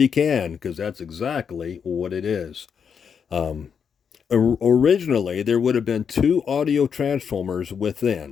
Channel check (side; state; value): right; quieter; 7.0 dB